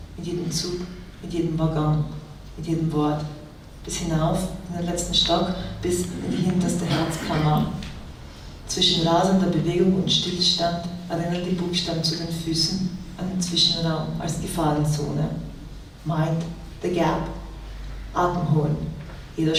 Mit jedem Zug, mit jedem Waggon, mit jedem Wort. Bis hinauf in den letzten Stock, bis in die hinterste Herzkammer. Zwischen rasender Bewegung und Stillstand erinnern die Buchstaben zu den Füßen an den Zwischenraum als Gefahrenzone. Mind the gap. Atem holen. Jeder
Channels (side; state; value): both; identical; correlation 1.00